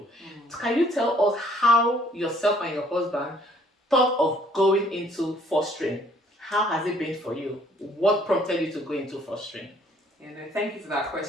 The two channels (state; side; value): normal; both; correlation 0.61